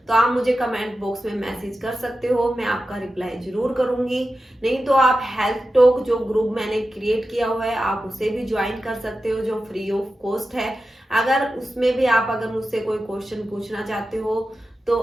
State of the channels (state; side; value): normal; both; correlation 0.92